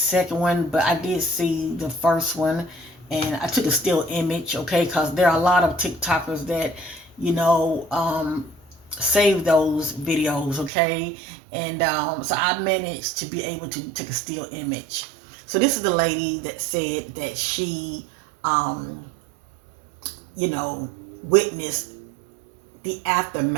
one, but I did see the first one, and I took a still image, okay, because there are a lot of TikTokers that, save those videos, okay, and so I managed to be able to take a still image. So this is the lady that said that she um, witness the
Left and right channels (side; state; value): left; drops out; at 10.7 s